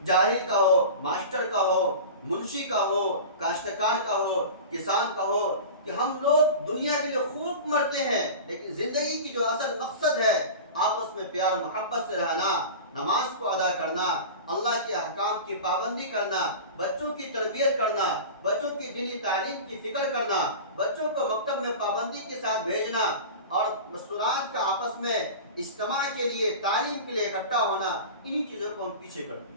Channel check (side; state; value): both; inverted; correlation -0.33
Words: جاہل کا ہو، ماسٹر کا ہو، منشی کا ہو، کاشتکار کا ہو، کسان کا ہو، کہ ہم لوگ دنیا کے لیے خوب مرتے ہیں، لیکن زندگی کی جو اصل مقصد ہے آپس میں پیار و محبت سے رہنا، نماز کو ادا کرنا، اللہ کے احکام کی پابندی کرنا، بچوں کی تربیت کرنا، بچوں کی دینی تعلیم کی فکر کرنا، بچوں کو مکتب میں پابندی کے ساتھ بھیجنا، اور مستورات کا آپس میں اجتماع کے لیے، تعلیم کے لیے اکٹھا ہونا، انہی چیزوں کو ہم پیچھے کرتے